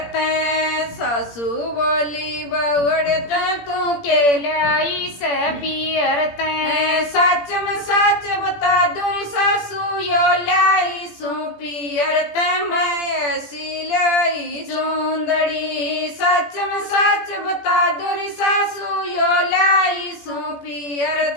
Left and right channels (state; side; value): late; right; 17 ms